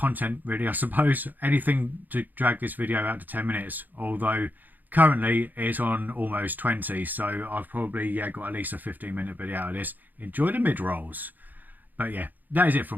really, I suppose. Anything to drag this video out to 10 minutes, although currently it's on almost 20, so I've probably got at least a 15-minute video out of this. Enjoy the mid-rolls. But yeah, that is it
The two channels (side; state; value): left; late; 0.085 ms